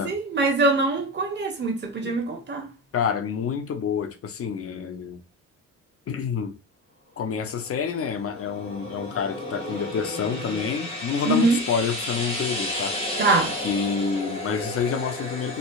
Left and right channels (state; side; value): normal; both; correlation 0.21